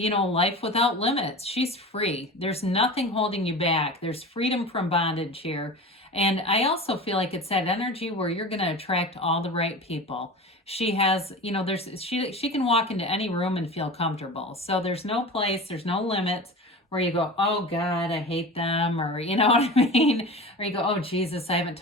without limits. She's free. There's nothing holding you back. There's freedom from bondage here. And I also feel like it's that energy where you're going to attract all the right people. She has, she can walk into any room and feel comfortable. So there's no place, there's no limits where you go, oh God, I hate them, or you know what I mean? Or you go, oh Jesus, I haven't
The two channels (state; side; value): normal; both; correlation 0.32